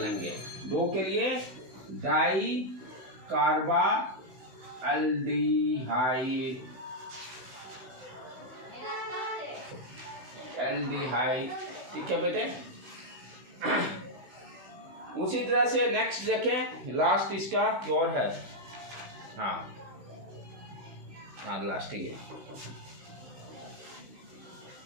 2 के लिए डाई कार्बा एल्डिहाइड, ठीक है बेटे। उसी तरह से नेक्स्ट देखें, लास्ट इसका और है, हाँ लास्ट ही है,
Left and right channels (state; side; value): late; left; 16 ms